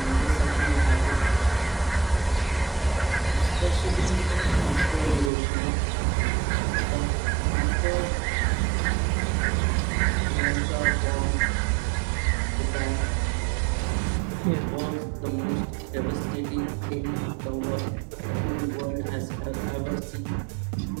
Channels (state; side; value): drops out; left; at 5.3 s